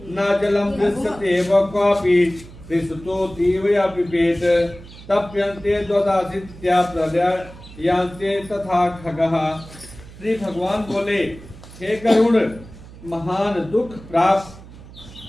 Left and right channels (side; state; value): right; noise; hum, 18 dB below the sound